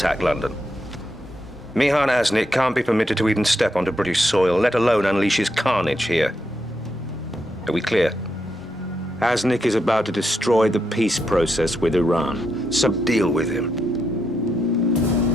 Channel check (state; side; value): normal; both; correlation 0.82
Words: London. Mihan Aznik can't be permitted to even step onto British soil, let alone unleash his carnage here. Are we clear? Aznik is about to destroy the peace process with Iran, so deal with him.